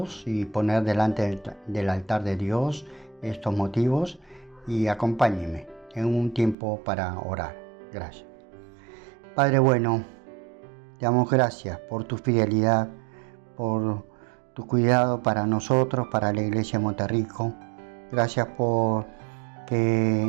y poner delante del altar de Dios estos motivos, y acompáñenme en un tiempo para orar. Gracias. Padre bueno, te damos gracias por tu fidelidad, por tu cuidado para nosotros, para la Iglesia de Monterrico. Gracias por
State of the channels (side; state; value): left; drops out; at 6.6 s